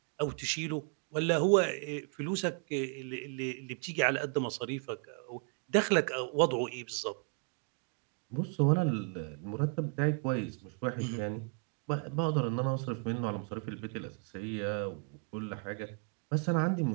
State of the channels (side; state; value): left; quieter; 38.8 dB